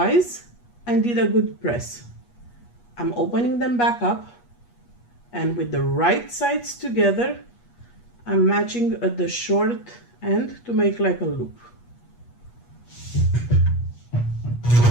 and did a good press. I'm opening them back up, and with the right sides together, I'm matching at the short end to make like a loop.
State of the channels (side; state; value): right; late; 8.3 ms